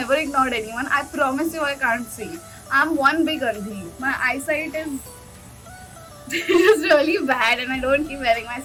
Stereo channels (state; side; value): identical; both; correlation 1.00